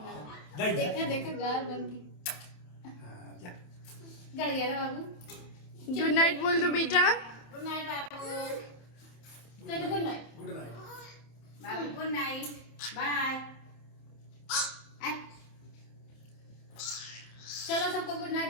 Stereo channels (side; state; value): right; late; 27 ms